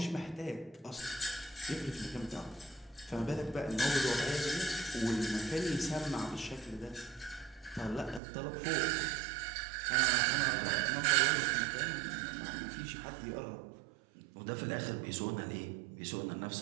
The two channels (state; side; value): drops out; left; at 8.2 s